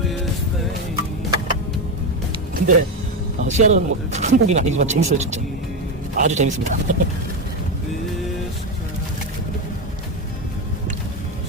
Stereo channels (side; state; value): both; normal; correlation 0.12